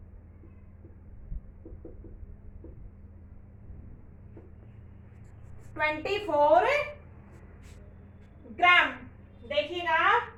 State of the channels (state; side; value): identical; both; correlation 1.00